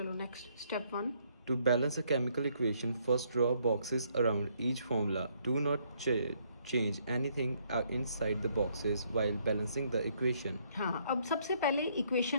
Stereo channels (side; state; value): both; inverted; correlation -0.69